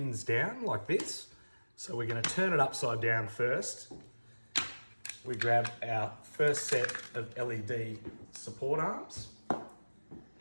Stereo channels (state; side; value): inverted; both; correlation -1.00